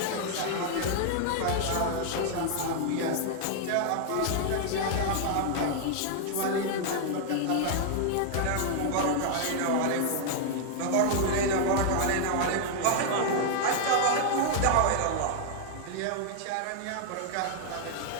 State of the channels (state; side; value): different; both; correlation 0.00